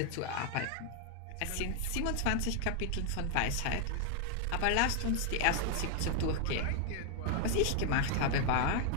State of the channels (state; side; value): different; both; correlation 0.00